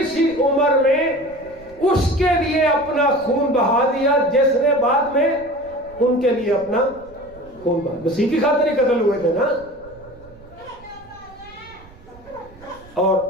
سی عمر میں اس کے لیے اپنا خون بہا دیا جس نے بعد میں ان کے لیے اپنا خون بہا۔ مسیح کی خاطر ہی قتل ہوئے تھے نا۔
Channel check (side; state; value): right; noise; rumble, 23 dB below the sound